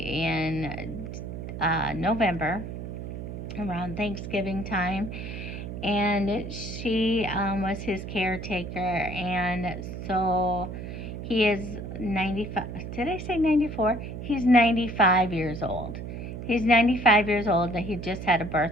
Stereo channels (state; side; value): noise; right; hum, 8 dB below the sound